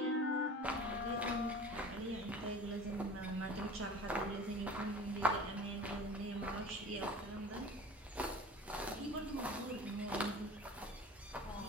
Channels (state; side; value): normal; both; correlation 0.40